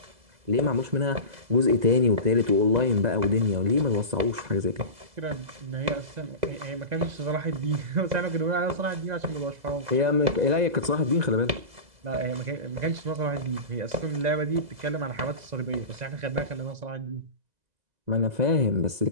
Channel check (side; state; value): left; late; 2.0 ms